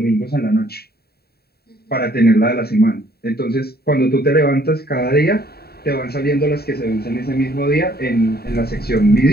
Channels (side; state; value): right; late; 0.46 ms